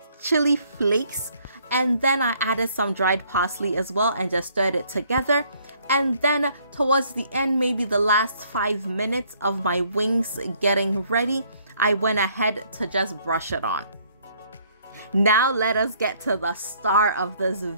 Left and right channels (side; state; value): both; inverted; correlation -0.64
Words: chili flakes, and then I added some dried parsley as well and just stirred it together. And then towards the end, maybe the last 5 minutes of my wings getting ready, I went ahead to just brush it on. Now let us get to the star of this